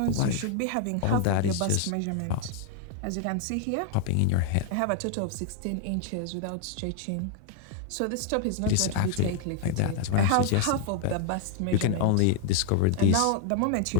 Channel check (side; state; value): both; different; correlation 0.00